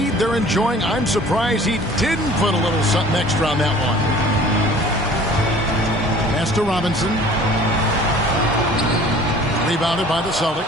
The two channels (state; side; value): normal; both; correlation 0.49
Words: they're enjoying, I'm surprised he didn't put a little something extra on that one. Pass to Robinson. Rebounded by the